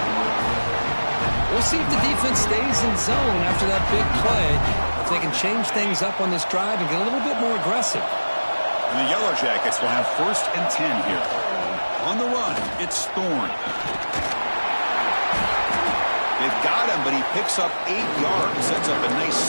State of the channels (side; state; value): both; inverted; correlation -1.00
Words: We'll see if the defense stays in zone after that big play. If they can change things up on this drive and get a little bit more aggressive. And the Yellow Jackets will have 1st and 10 here. On the run, it's Thorne. They've got him, but he picks up 8 yards. Sets up a nice